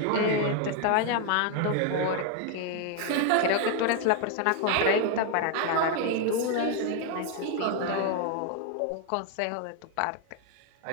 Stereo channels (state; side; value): different; both; correlation 0.01